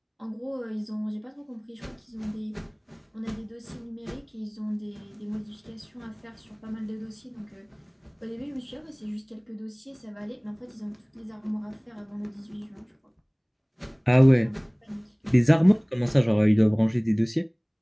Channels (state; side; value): identical; both; correlation 1.00